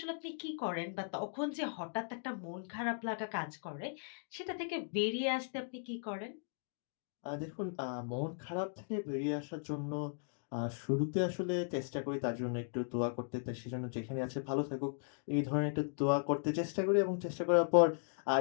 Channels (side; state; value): right; silent; digital silence